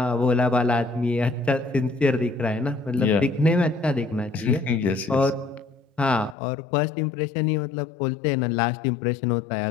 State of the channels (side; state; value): right; drops out; at 6.4 s